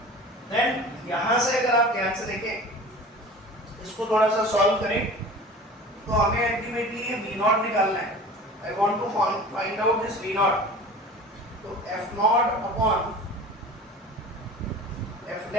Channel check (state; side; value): normal; both; correlation 0.40